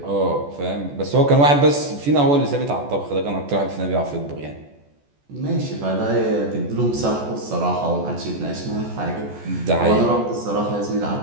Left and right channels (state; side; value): late; left; 14 ms